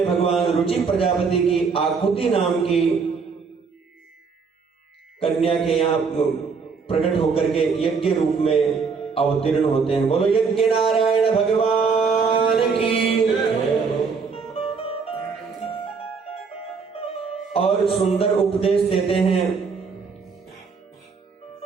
भगवान रुचि प्रजापति की आकुति नाम की कन्या के यहाँ प्रकट होकर के यज्ञ रूप में अवतीर्ण होते हैं। बोलो यज्ञ नारायण भगवान की। और सुंदर उपदेश देते हैं।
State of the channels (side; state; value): left; quieter; 5.2 dB